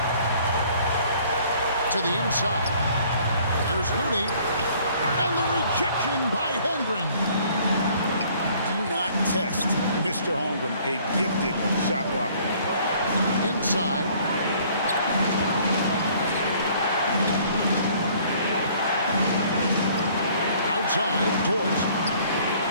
To the inside. There's Looney, and the rejection by Holmgren. Do not test Mr. Holmgren, a gifted shot blocker. Inside. Outside, Dort.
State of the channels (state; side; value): inverted; both; correlation -0.58